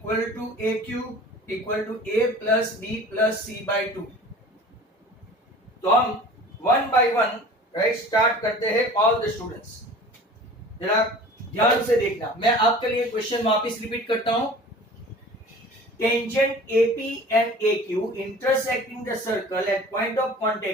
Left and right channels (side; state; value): both; normal; correlation 0.43